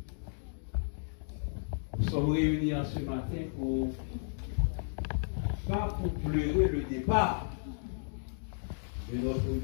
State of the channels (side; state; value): right; silent; digital silence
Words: Nous sommes réunis en ce matin pas pour pleurer le départ de notre